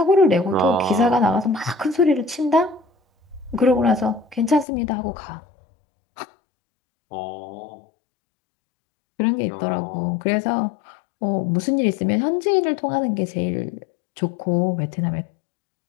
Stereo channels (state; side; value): drops out; right; at 4.7 s